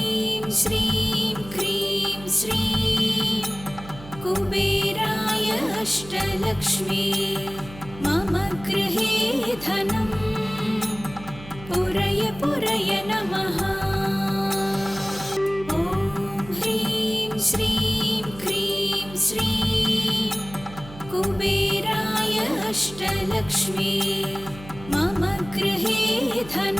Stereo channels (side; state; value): right; noise; hum, 16 dB below the sound